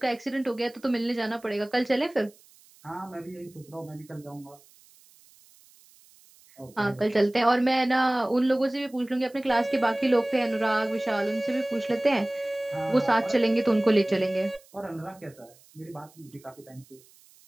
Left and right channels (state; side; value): noise; right; hiss, 27 dB below the sound